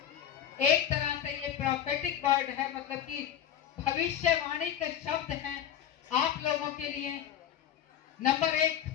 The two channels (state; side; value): quieter; right; 9.8 dB